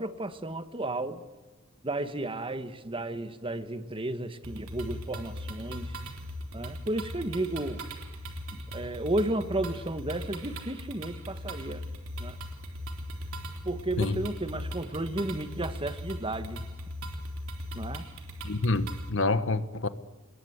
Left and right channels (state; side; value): normal; both; correlation 0.55